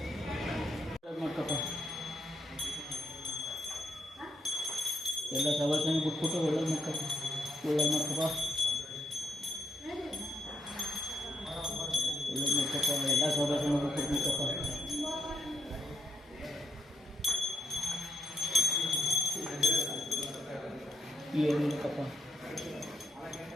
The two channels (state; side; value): normal; both; correlation 0.78